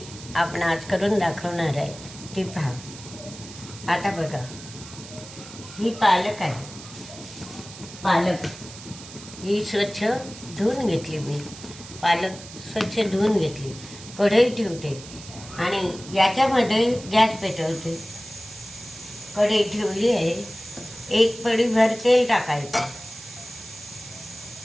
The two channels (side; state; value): right; noise; hiss, 15 dB below the sound